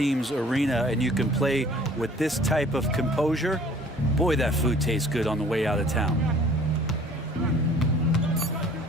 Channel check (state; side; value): normal; both; correlation 0.52